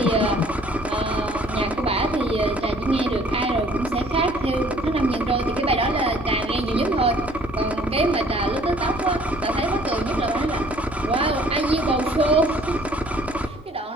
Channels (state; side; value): normal; both; correlation 0.56